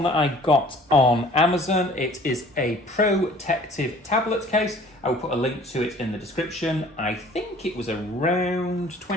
that I got on Amazon. It is a protective tablet case. I will put a link to it in the description. I think it was around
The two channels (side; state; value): both; normal; correlation 0.51